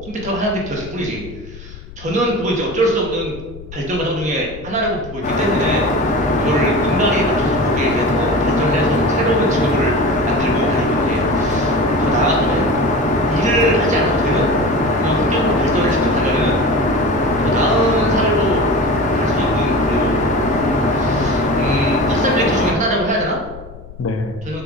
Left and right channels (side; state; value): left; noise; rumble, 16 dB below the sound